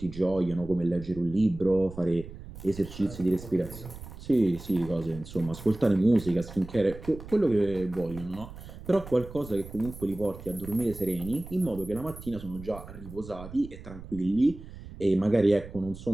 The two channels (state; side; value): noise; right; rumble, 14 dB below the sound